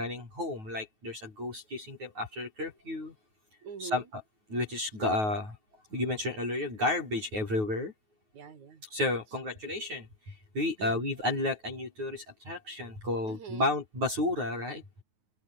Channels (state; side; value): late; left; 9.4 ms